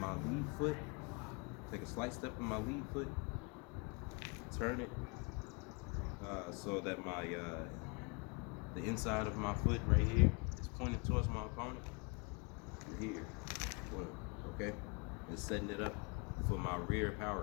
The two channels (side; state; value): right; quieter; 31.1 dB